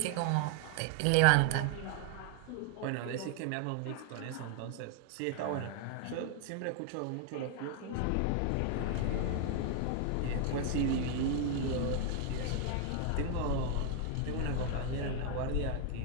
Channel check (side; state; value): both; different; correlation 0.00